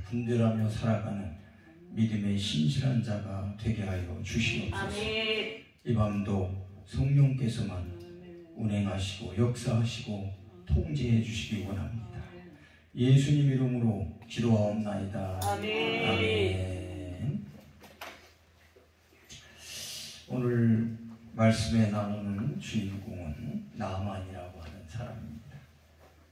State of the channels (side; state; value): both; identical; correlation 1.00